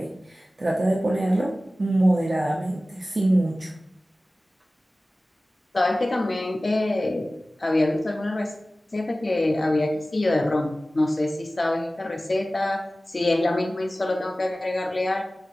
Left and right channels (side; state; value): both; normal; correlation 0.97